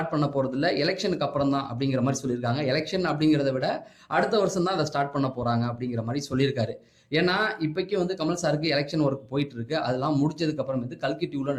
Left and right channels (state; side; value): identical; both; correlation 1.00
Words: பண்ண போறது இல்ல, எலெக்ஷனுக்கு அப்புறம் தான் அப்படிங்கிற மாதிரி சொல்லியிருக்காங்க. எலெக்ஷன் அப்படிங்கிறத விட அடுத்த வருஷம் தான் அதை ஸ்டார்ட் பண்ண போறாங்க அப்படிங்கிற மாதிரி சொல்லியிருக்காரு. ஏன்னா இப்போக்கி கமல் சாருக்கு எலெக்ஷன் ஒர்க் போயிட்டு இருக்கு. அதெல்லாம் முடிச்சதுக்கு அப்புறம் கல்கி 2ல